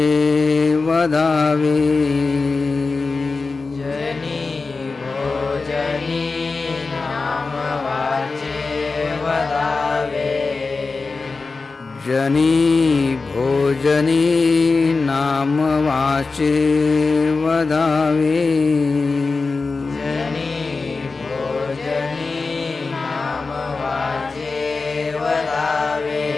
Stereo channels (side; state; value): right; quieter; 4.0 dB